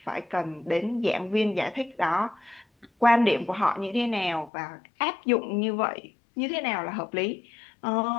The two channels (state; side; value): drops out; right; at 4.5 s